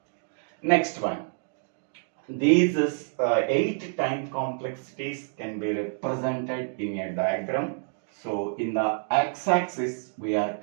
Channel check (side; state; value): left; silent; digital silence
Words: Next one. These 8 time complexities can be represented in a diagram. So in the x-axis, we are